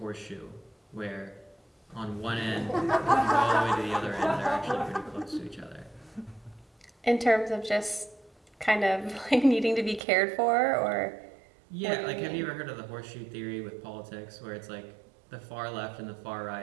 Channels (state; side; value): drops out; left; at 10.0 s